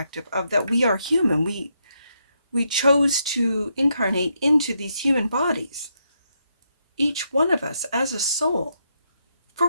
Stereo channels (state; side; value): inverted; both; correlation -0.79